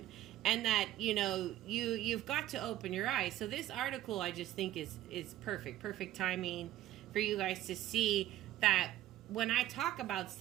And that, you know, you've got to open your eyes. So this article I just think is perfect timing for you guys to see that when I talk about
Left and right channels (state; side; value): quieter; left; 14.0 dB